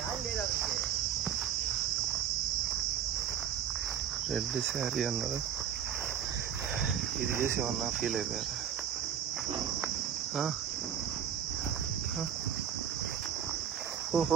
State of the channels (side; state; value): left; quieter; 9.1 dB